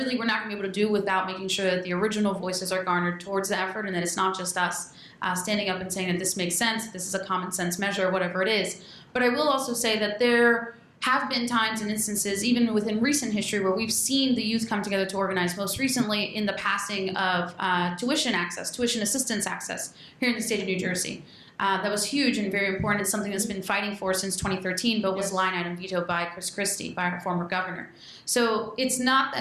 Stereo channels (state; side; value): identical; both; correlation 1.00